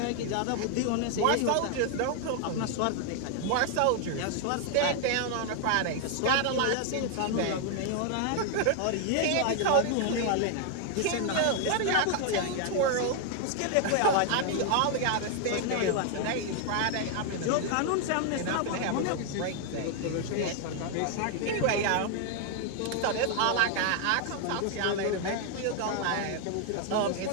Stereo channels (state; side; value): different; both; correlation 0.00